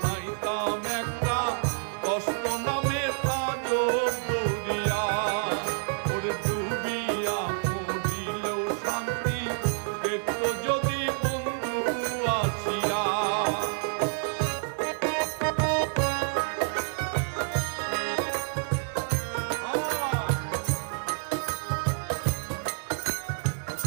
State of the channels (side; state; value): left; silent; 59 dB below the other